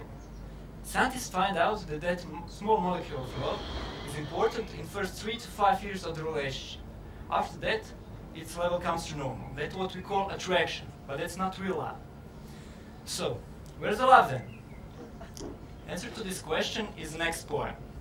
Scientists find out that that small molecule of love is important in the first 3 to 5 years of the relationship. After that, its level comes to normal. That's what we call attraction, but that's not real love. So, where's the love then? Answer to this question is the next poem.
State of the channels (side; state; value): both; identical; correlation 1.00